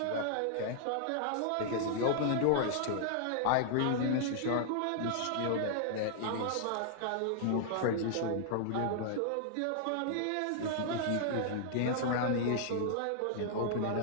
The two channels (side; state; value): both; different; correlation -0.01